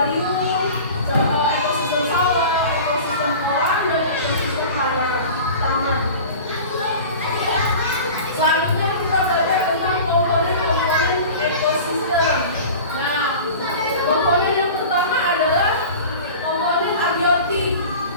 ekosistem sawah, ekosistem kolam, dan ekosistem taman. Selanjutnya kita belajar tentang komponen-komponen ekosistem. Nah, komponen yang pertama adalah komponen abiotik.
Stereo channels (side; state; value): both; inverted; correlation -0.37